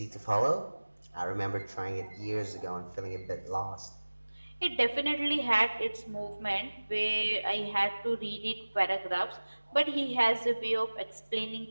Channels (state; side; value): inverted; both; correlation -1.00